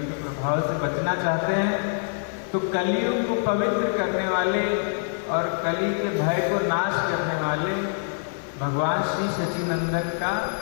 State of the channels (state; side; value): silent; right; digital silence